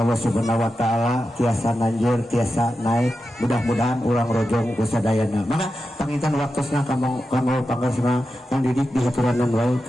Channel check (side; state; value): both; normal; correlation 0.90